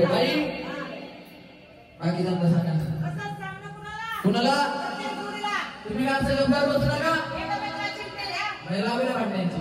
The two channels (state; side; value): identical; both; correlation 1.00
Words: बाकी सांगा सांगा कुणाला तुम्ही काय असं गंभीर बसू नका महिला वगैरे वाटण्याची